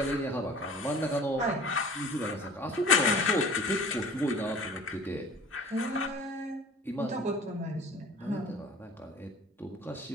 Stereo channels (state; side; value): normal; both; correlation 0.44